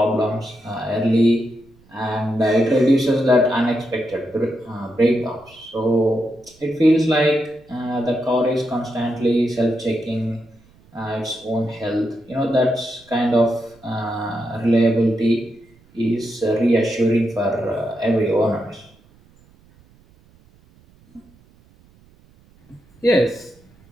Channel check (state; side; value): noise; right; rumble, 29 dB below the sound